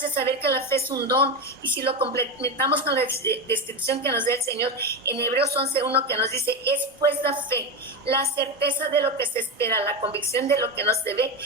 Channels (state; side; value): normal; both; correlation 0.16